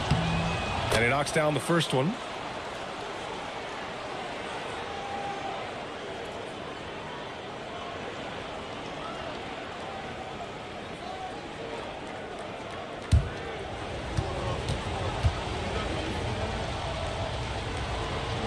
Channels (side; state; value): both; identical; correlation 1.00